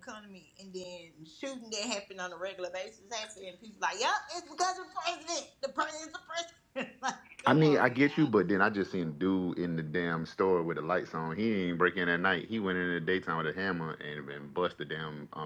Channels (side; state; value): both; identical; correlation 1.00